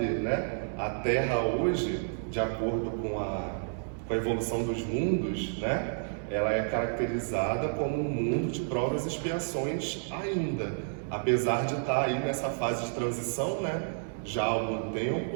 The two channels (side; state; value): left; silent; digital silence